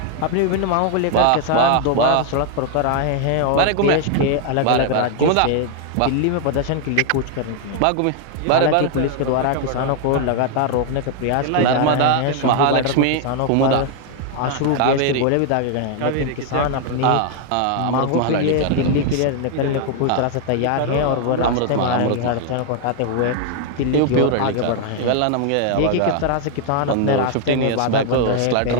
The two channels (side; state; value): both; different; correlation 0.00